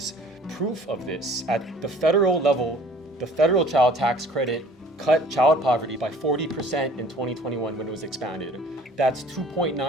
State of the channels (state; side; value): normal; both; correlation 0.51